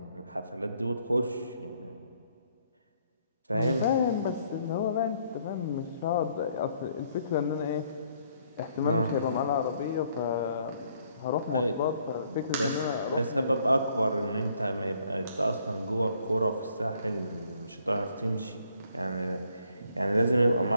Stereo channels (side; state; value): both; inverted; correlation -0.67